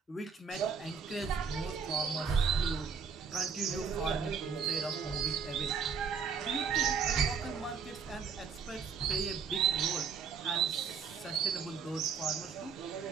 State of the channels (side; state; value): left; quieter; 6.1 dB